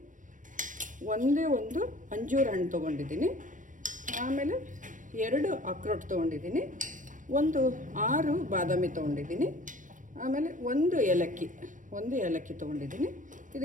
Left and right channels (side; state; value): left; late; 0.37 ms